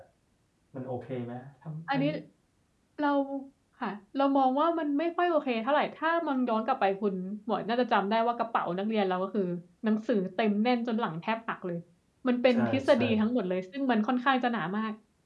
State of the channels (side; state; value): both; identical; correlation 1.00